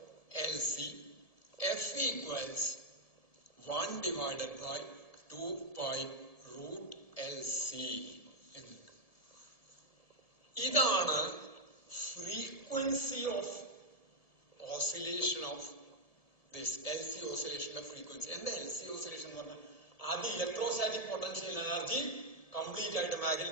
f equals 1/2π√LC. ഇതാണ് frequency of oscillation of this LC ഓസിലേഷന്റെ ഫ്രീക്വൻസി. എന്താ LC ഓസിലേഷൻ എന്ന് പറഞ്ഞാൽ? ആദ്യം ഇലക്ട്രോസ്റ്റാറ്റിക് പൊട്ടൻഷ്യൽ എനർജി കംപ്ലീറ്റ് ആയിട്ട്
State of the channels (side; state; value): right; late; 1.7 ms